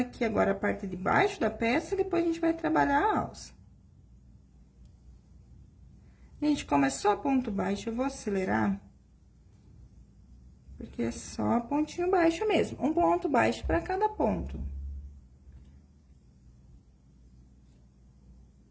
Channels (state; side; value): identical; both; correlation 1.00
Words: agora a parte de baixo da peça, e depois a gente vai trabalhar a alça. Gente, como é só ponto baixo, eu vou acelerar. Porque é só pontinho baixo mesmo. Um ponto baixo para cada ponto.